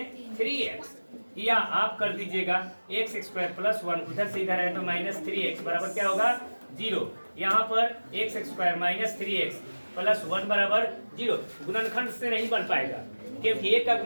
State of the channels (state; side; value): inverted; both; correlation -1.00